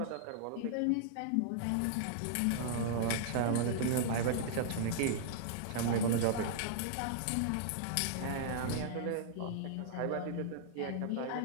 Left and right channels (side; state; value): both; different; correlation -0.01